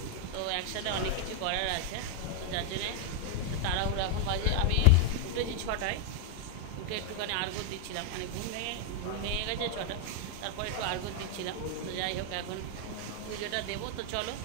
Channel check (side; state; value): both; different; correlation 0.00